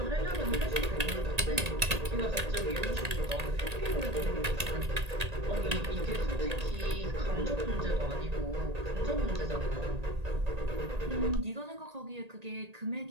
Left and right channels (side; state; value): left; late; 1.8 ms